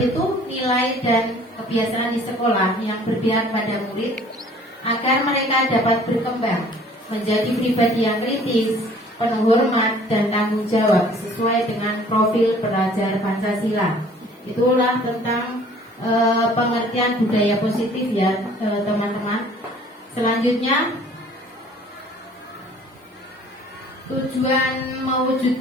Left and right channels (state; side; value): normal; both; correlation 0.53